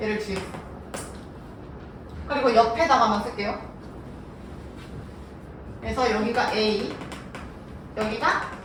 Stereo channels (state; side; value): identical; both; correlation 1.00